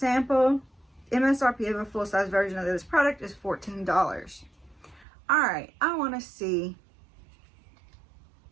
MSRP of a full-size version of this product is $14. All right, I want to see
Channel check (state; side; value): drops out; left; at 5.1 s